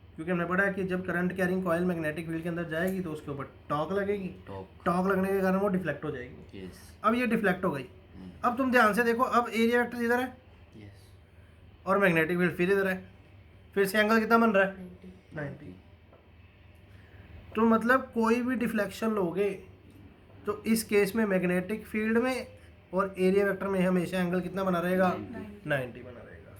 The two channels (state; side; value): identical; both; correlation 1.00